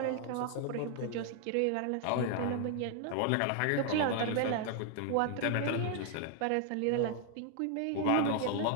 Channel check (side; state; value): both; different; correlation 0.00